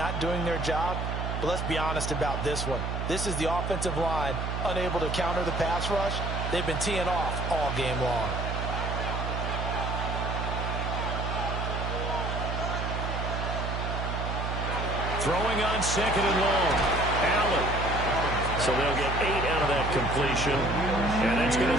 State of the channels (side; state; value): right; noise; hum, 2 dB below the sound